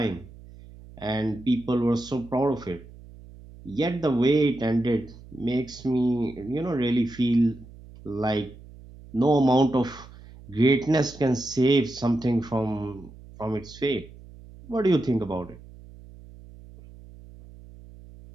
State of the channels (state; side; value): noise; right; hum, 19 dB below the sound